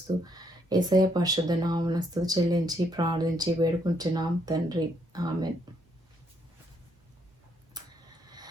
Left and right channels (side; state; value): both; normal; correlation 0.73